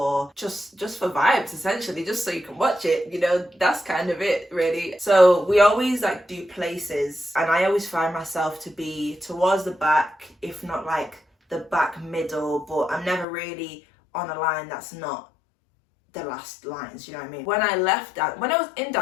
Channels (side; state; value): right; drops out; at 13.2 s